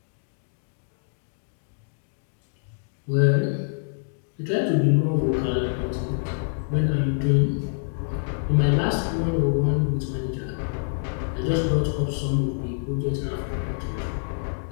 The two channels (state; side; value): silent; right; digital silence